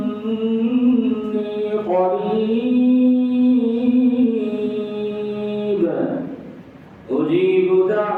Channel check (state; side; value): identical; both; correlation 1.00